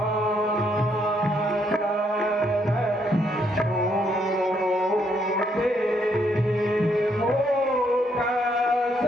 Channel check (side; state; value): both; normal; correlation 0.73